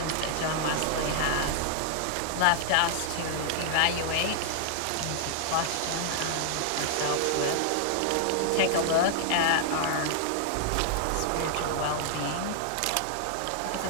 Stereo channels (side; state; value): both; different; correlation 0.00